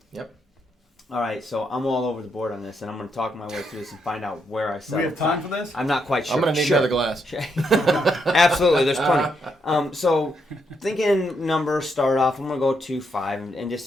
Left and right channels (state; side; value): normal; both; correlation 0.78